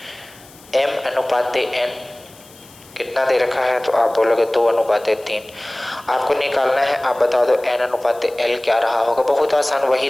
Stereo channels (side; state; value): left; noise; hiss, 24 dB below the sound